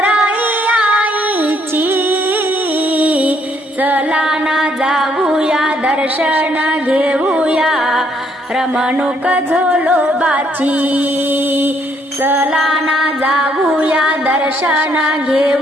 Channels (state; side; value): normal; both; correlation 0.69